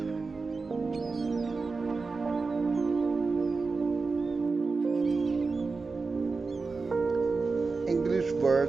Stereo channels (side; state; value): left; quieter; 4.2 dB